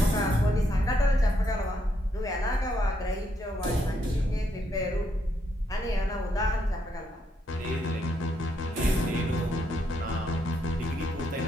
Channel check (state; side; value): normal; both; correlation 0.76